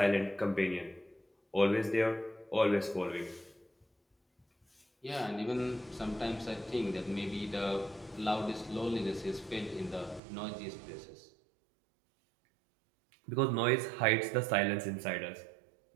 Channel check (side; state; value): left; drops out; at 10.2 s